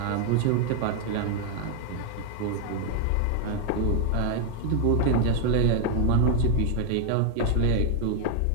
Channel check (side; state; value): both; different; correlation 0.01